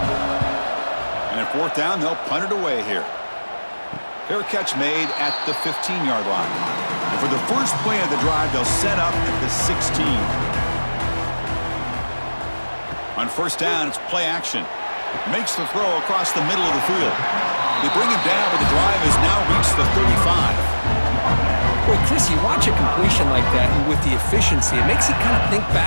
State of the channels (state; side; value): inverted; both; correlation -1.00